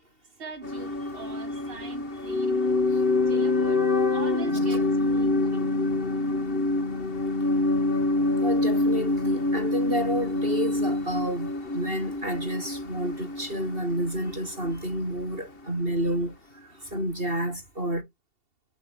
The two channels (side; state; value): left; late; 2.7 ms